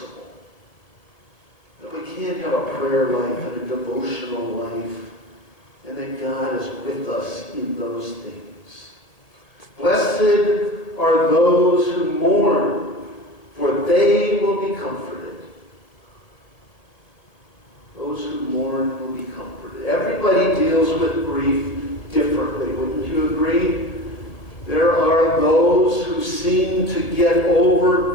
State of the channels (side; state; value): right; late; 1.7 ms